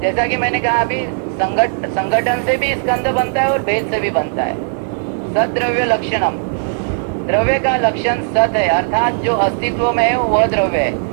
जैसा कि मैंने कहा अभी संगठन से भी स्कंध बनता है और भेद से भी बनता है। सद्रव्य लक्षणम, द्रव्य का लक्षण सत है, अर्थात जो अस्तित्व में है वह द्रव्य है।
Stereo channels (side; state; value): left; silent; digital silence